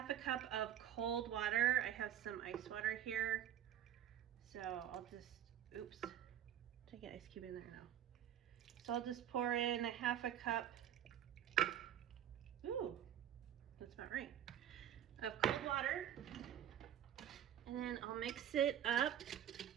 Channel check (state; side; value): quieter; left; 10.7 dB